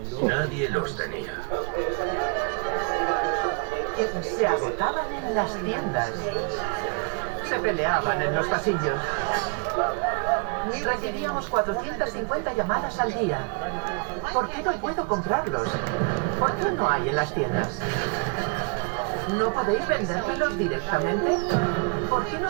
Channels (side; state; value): left; quieter; 34.5 dB